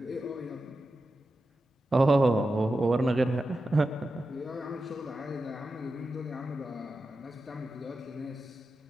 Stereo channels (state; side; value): normal; both; correlation 0.91